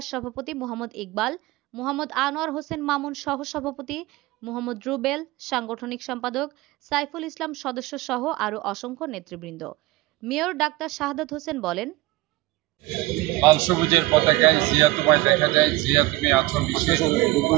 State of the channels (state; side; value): quieter; left; 18.9 dB